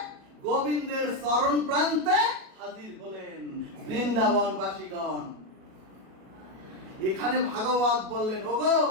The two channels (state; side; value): late; left; 37 ms